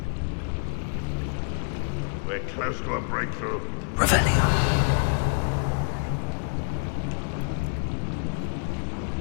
We're close to a breakthrough. Revelio.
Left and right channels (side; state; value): right; silent; digital silence